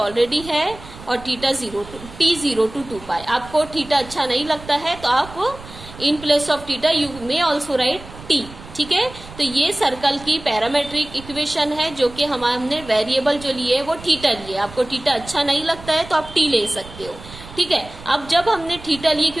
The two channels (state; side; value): noise; right; rumble, 17 dB below the sound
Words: है, और थीटा 0 टी 0 to 2 पाई। आपको थीटा अच्छा नहीं लगता है तो आप in place of theta you may also right T. ठीक है, तो ये सर्कल की पैरामेट्रिक इक्वेशन है, जो कि हमने वेरिएबल जो लिए है वो थीटा लिए। आपको थीटा अच्छा नहीं लगता है तो आप टी ले सकते हो। ठीक है, अब जब हमने थीटा लिए,